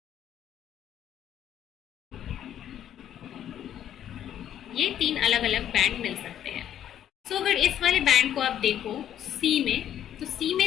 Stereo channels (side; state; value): right; quieter; 10.5 dB